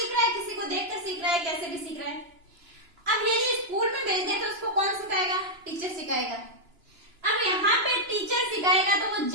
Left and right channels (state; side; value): late; left; 2.9 ms